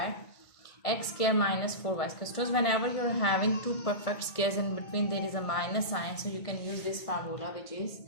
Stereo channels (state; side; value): late; right; 1.6 ms